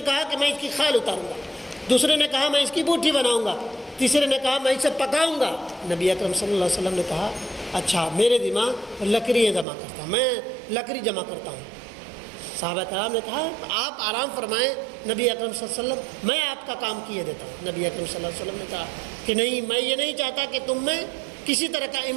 کہا کہ میں اس کی کھال اتاروں گا، دوسرے نے کہا میں اس کی بوٹی بناؤں گا، تیسرے نے کہا میں اسے پکاؤں گا۔ نبی اکرم صلی اللہ علیہ وسلم نے کہا اچھا میرے دماغ لکڑی جمع کرتا ہوں، میں لکڑی جمع کرتا ہوں۔ صحابہ کرام نے کہا آپ آرام فرمائیں نبی اکرم صلی اللہ علیہ وسلم، میں آپ کا کام کیے دیتا ہوں۔ نبی اکرم صلی اللہ علیہ وسلم نے کہا کہ نہیں، میں یہ نہیں چاہتا کہ تم میں کسی طرح کا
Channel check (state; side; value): drops out; left; at 9.7 s